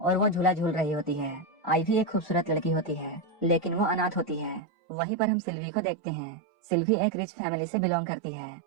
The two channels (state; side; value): drops out; left; at 4.6 s